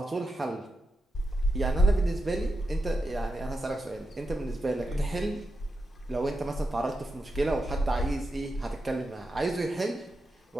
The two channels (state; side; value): normal; both; correlation 0.88